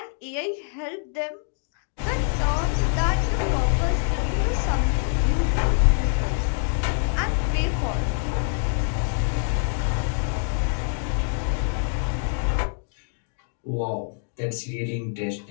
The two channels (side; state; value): right; silent; 58 dB below the other